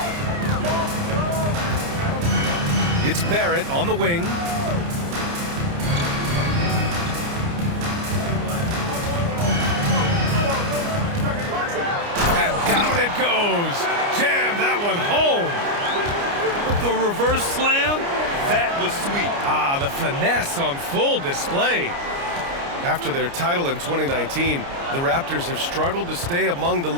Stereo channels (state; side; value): late; left; 29 ms